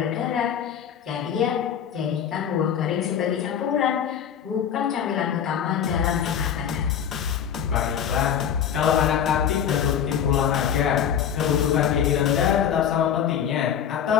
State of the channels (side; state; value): right; quieter; 8.6 dB